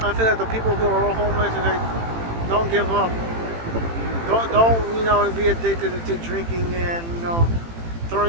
I feel like the people who are homeless and like don't give up. Don't be addicted to drinking and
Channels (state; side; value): late; left; 18 ms